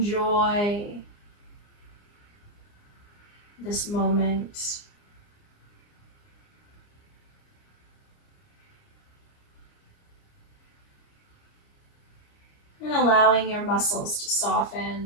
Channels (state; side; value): late; right; 29 ms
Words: this moment. And allowing your muscles to